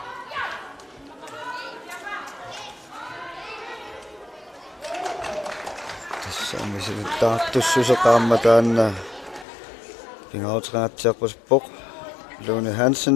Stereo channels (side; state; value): right; drops out; at 9.5 s